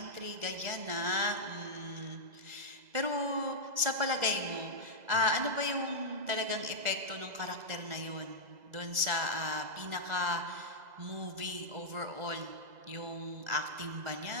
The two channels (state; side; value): late; left; 2.0 ms